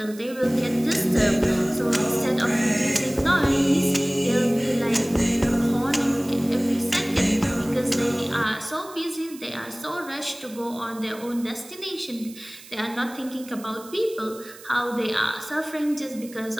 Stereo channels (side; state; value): right; noise; hiss, 19 dB below the sound